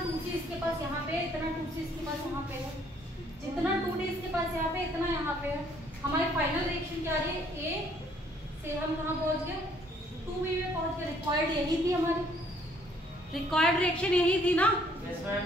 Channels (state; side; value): normal; both; correlation 0.63